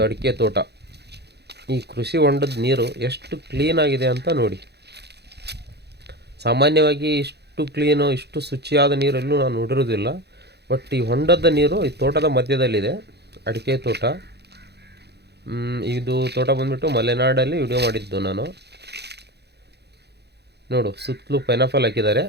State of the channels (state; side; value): late; left; 0.48 ms